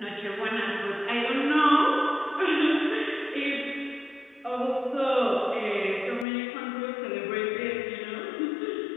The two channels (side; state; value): right; drops out; at 6.2 s